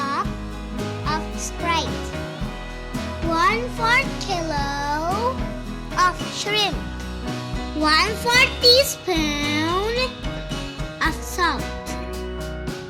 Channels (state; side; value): identical; both; correlation 1.00